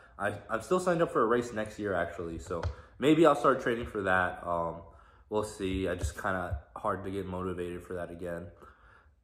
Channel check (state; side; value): identical; both; correlation 1.00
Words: I'm still signed up for a race next year, actually. So maybe I'll start training for that. We'll see. I just kind of hard to get motivated for that again.